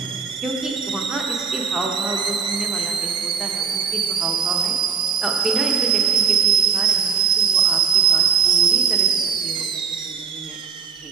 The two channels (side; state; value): left; quieter; 6.4 dB